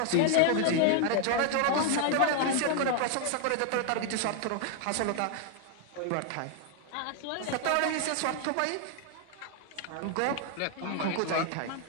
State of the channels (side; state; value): both; different; correlation 0.00